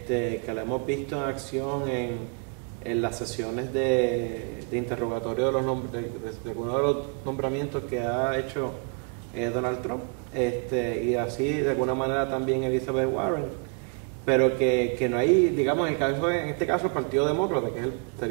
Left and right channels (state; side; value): quieter; left; 36.7 dB